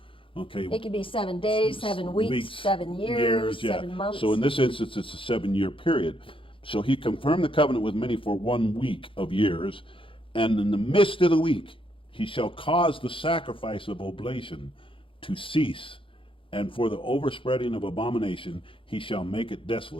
Okay. It could be 7 days, 7 weeks, 7 years, yeah. 7 months. So in this instance, it's a 7-year period. So he confirmed the covenant with many for 1 week of years, and in the midst of the week he shall cause the sacrifice of oblation to cease, and for the overspreading of abomination he shall make it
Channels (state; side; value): late; right; 0.25 ms